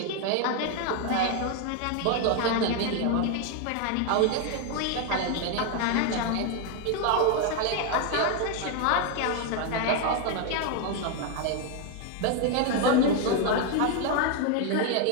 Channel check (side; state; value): both; different; correlation 0.01